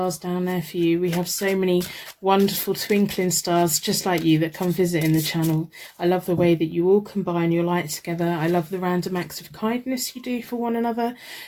down there for you. We have so many wonderful twinkling stars just like you that come visiting the channel. I love the way that you all combine your light together. I love the random acts of kindness you do for one another.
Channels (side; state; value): both; identical; correlation 1.00